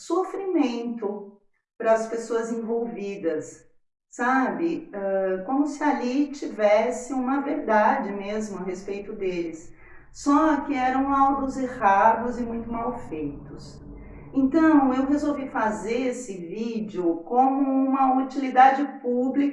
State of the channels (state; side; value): identical; both; correlation 1.00